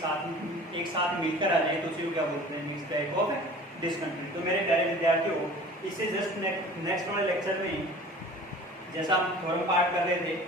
साथ मिलकर आ जाए तो उसी को क्या बोलते हैं, मिक्स्ड टाइप ऑफ डिसकंटिन्यूटी। तो मेरे प्यारे विद्यार्थियों, इससे जस्ट नेक्स्ट वाले लेक्चर में जैसा हम थ्योरम पार्ट कर रहे थे,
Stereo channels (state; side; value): normal; both; correlation 0.43